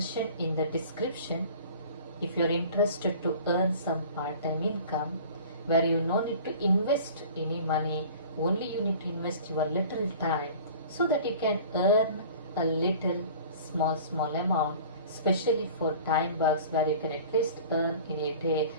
in the description. If you are interested to earn some part-time income where you no need to invest any money, only you need to invest your little time so that you can earn a little small amount, especially for time works where you can at least earn in a day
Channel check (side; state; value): both; inverted; correlation -0.43